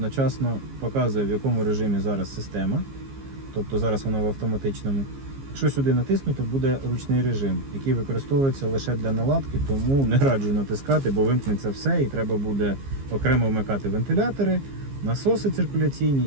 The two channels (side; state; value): left; late; 15 ms